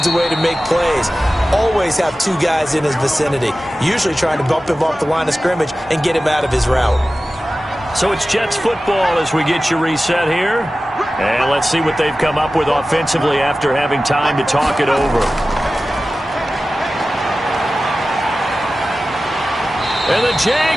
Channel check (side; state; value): both; normal; correlation 0.95